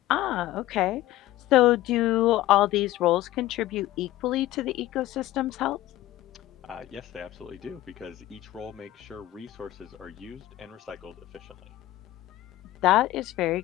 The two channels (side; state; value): right; quieter; 15.6 dB